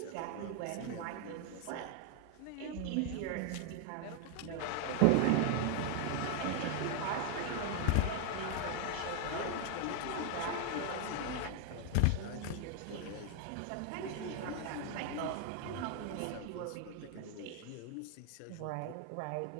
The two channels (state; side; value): different; both; correlation 0.00